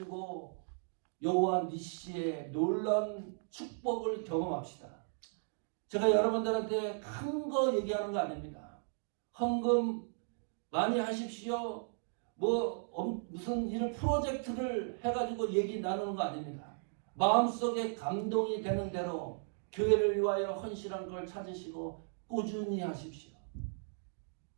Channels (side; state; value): left; silent; digital silence